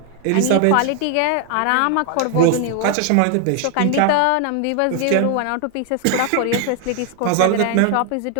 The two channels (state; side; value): different; both; correlation 0.00